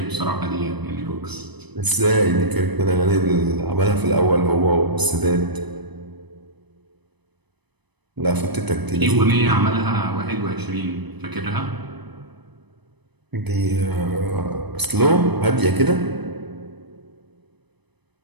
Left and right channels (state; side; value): late; left; 0.99 ms